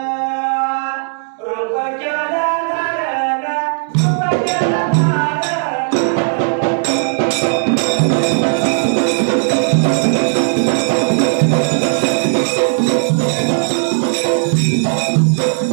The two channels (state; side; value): silent; left; digital silence